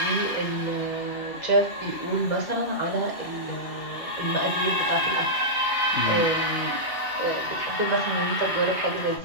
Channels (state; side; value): late; right; 2.7 ms